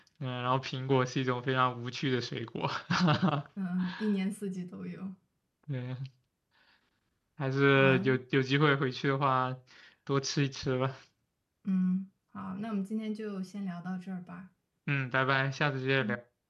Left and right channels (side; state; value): both; identical; correlation 1.00